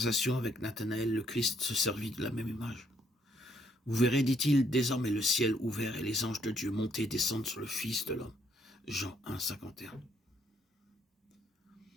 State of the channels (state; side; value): normal; both; correlation 0.70